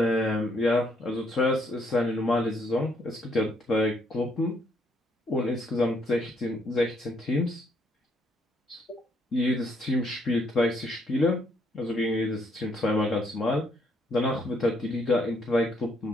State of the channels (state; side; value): normal; both; correlation 0.71